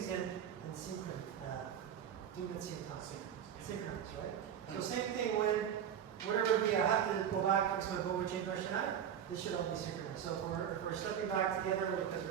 in synchronous. Doing it same time. Synchronous, right? So same thing when whatever we have to go back to my bow and change our shiai, this should all be synchronous. So if we're stepping back together because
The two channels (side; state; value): left; quieter; 9.0 dB